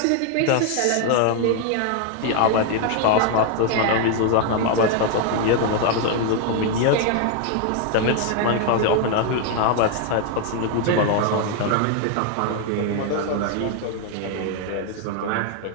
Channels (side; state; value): both; different; correlation 0.00